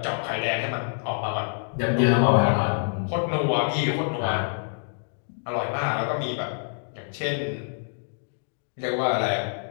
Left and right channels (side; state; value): right; silent; digital silence